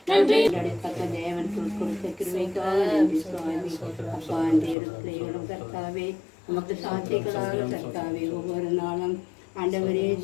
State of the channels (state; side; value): drops out; right; at 4.8 s